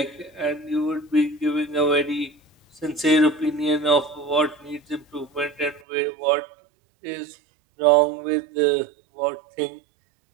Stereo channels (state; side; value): drops out; left; at 5.8 s